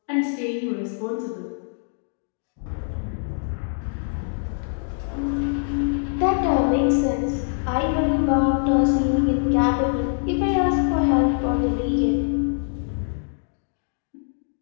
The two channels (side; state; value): right; silent; digital silence